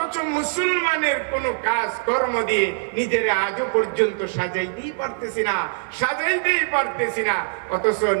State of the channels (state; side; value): silent; left; 61 dB below the other